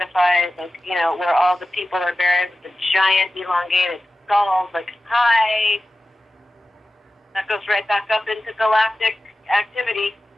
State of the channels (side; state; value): both; normal; correlation 0.95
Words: like, you know, where all the people are buried with the giant elongated skulls, like, hi. That goes right back up into galactic activity